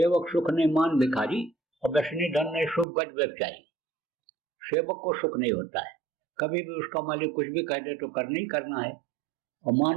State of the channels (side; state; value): left; drops out; at 2.9 s